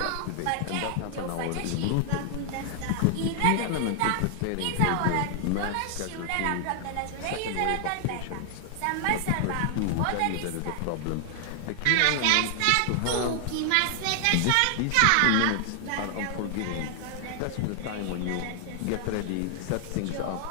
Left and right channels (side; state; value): both; different; correlation 0.00